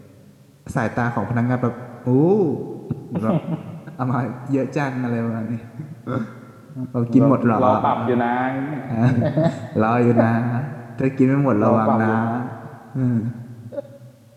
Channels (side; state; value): both; identical; correlation 1.00